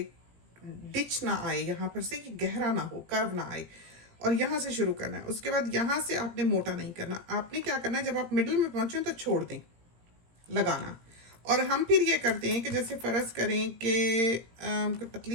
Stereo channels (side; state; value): left; late; 17 ms